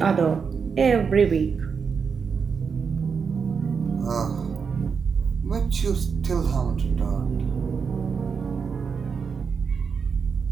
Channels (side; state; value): left; quieter; 5.9 dB